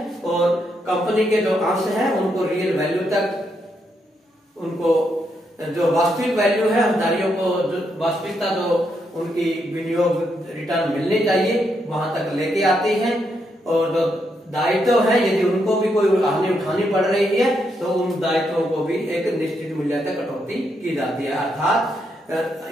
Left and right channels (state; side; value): normal; both; correlation 0.79